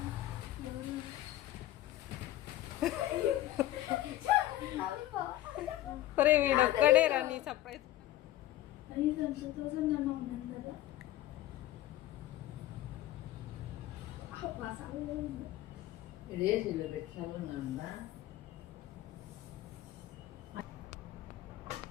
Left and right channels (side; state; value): right; quieter; 14.7 dB